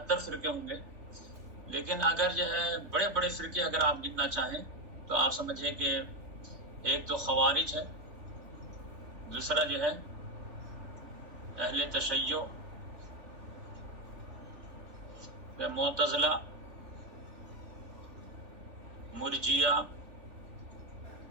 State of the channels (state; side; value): late; left; 3.4 ms